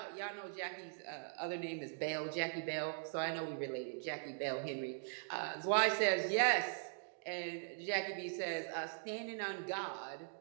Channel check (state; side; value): silent; left; digital silence